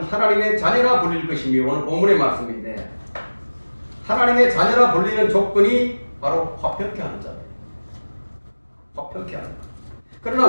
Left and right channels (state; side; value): inverted; both; correlation -1.00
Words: 하나님의 자녀라 불릴 것이며, 오늘 본문의 말씀인데 하나님의 자녀라 불리는 조건이 바로 화평케 하는 자예요. 화평케 하는 자. 그러나